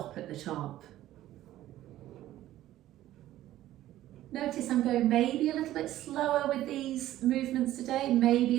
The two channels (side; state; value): left; quieter; 14.1 dB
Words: at the top. Notice I'm going maybe a little bit slower with these movements today, maybe